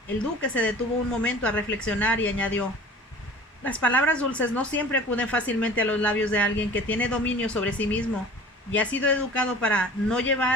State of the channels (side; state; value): both; normal; correlation 0.42